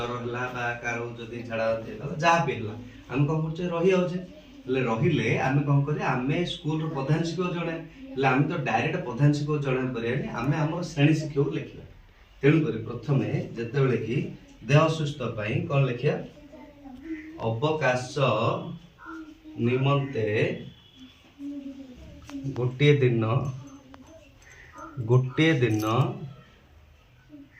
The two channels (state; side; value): identical; both; correlation 1.00